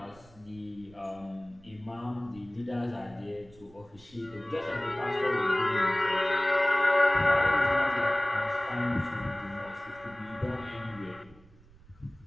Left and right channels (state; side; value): noise; right; rumble, 25 dB below the sound